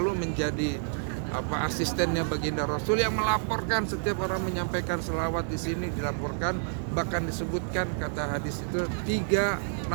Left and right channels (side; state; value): left; silent; 59 dB below the other